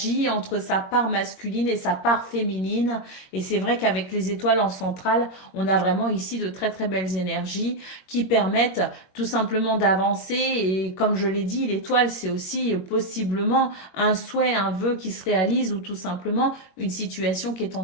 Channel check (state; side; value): late; right; 21 ms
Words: entre sa part masculine et sa part féminine. Et c'est vrai qu'avec les étoiles en centrale, on a vraiment ici de très très belles énergies qui permettent tout simplement d'avancer. Et comme je l'ai dit, l'étoile, c'est aussi possiblement un souhait, un vœu qui se réalise ou tout simplement une situation qui est